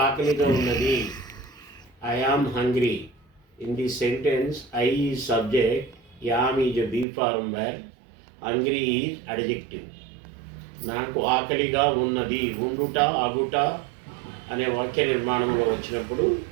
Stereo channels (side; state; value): left; drops out; at 7.1 s